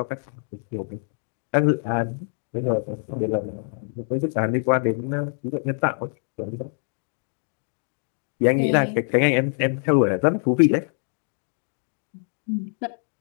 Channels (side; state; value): right; silent; 55 dB below the other